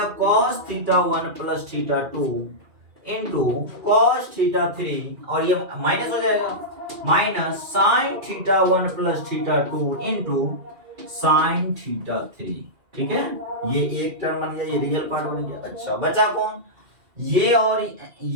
cos theta 1 plus theta 2 into cos theta 3, और ये माइनस हो जाएगा minus sign theta 1 plus theta 2 into sine theta 3, ठीक है। ये एक टर्म बन गया, ये रियल पार्ट बन गया। अच्छा बचा कौन, ये और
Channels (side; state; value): left; late; 2.4 ms